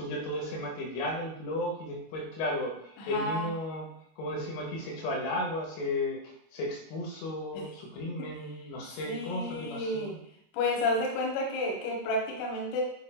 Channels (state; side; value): late; right; 25 ms